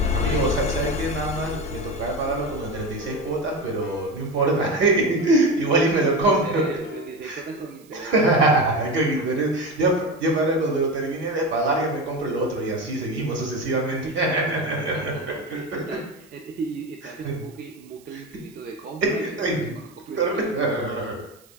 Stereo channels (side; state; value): right; noise; hiss, 28 dB below the sound